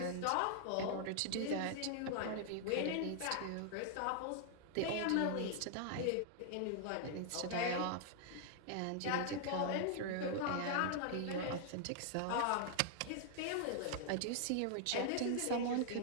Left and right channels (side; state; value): both; different; correlation -0.01